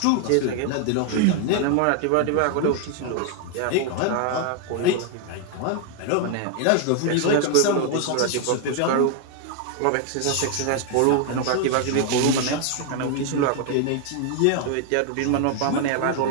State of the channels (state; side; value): different; both; correlation 0.00